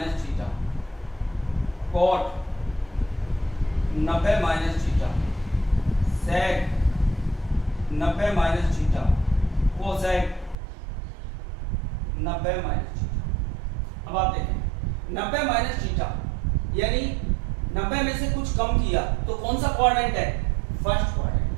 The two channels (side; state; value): left; drops out; at 10.6 s